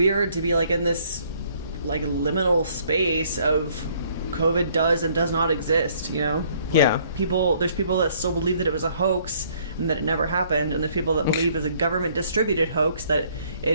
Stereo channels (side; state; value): both; inverted; correlation -0.62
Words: to be in this liminal space of COVID does and does not exist, Yeah. There's people that still believe that it was a hoax and that it never happened, and there's people that believe it's a government distributed hoax that it